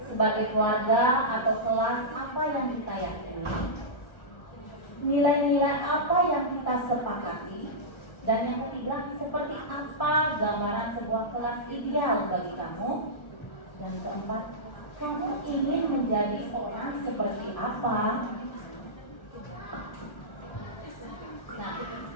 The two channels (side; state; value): right; late; 1.3 ms